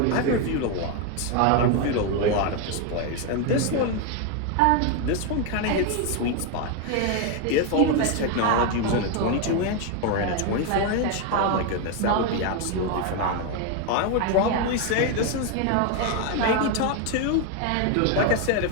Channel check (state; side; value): different; both; correlation 0.01